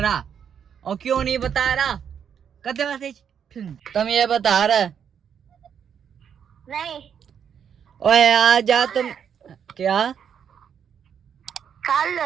और क्यों नहीं बता रहा। करते मैसेज, तुम ये बता रहा नहीं, ओए आ जा तुम। क्या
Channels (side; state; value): left; quieter; 8.0 dB